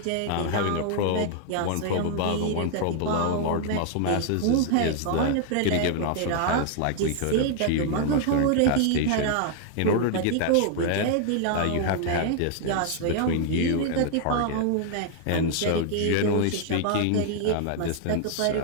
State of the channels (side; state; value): both; different; correlation 0.00